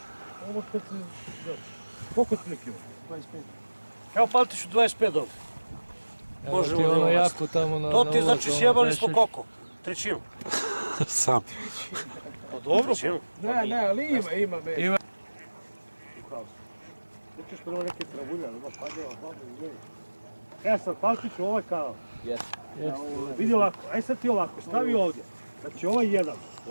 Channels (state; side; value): inverted; both; correlation -1.00